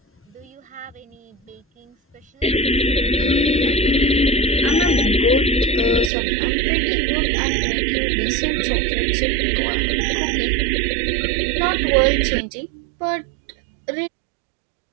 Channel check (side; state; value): left; drops out; at 6.1 s